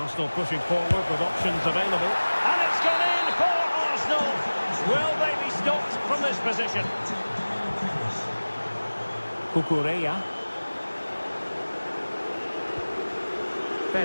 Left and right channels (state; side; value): inverted; both; correlation -1.00